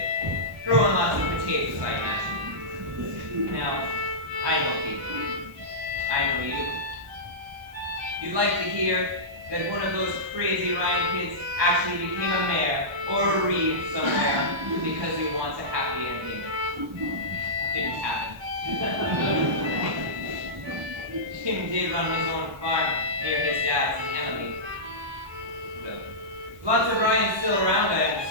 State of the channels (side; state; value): left; late; 1.2 ms